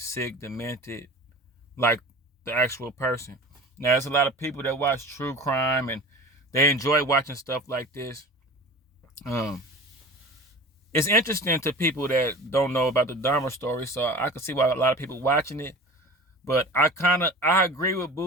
sick, demented, like the actual person. Now, there's a lot of people that watch true crime and they enjoy watching stuff like this. It's interesting to people that don't know about the Dahmer story, so I can see why a lot of people watching it. But I agree with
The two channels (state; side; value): normal; both; correlation 0.37